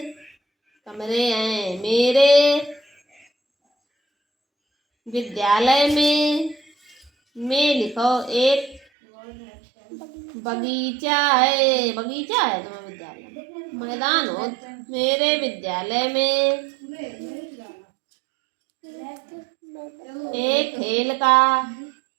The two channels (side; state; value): left; drops out; at 8.8 s